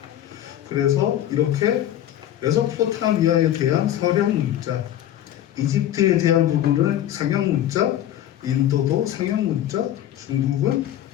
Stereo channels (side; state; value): right; quieter; 11.9 dB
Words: 그래서 이렇게 메소포타미아에 대한 서령 문자, 이집트에 대한 부분을 상형 문자, 인도도 상형 문자, 중국은